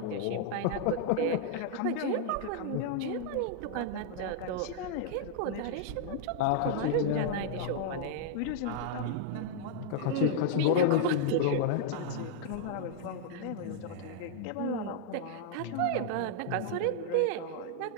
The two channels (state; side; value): different; both; correlation -0.01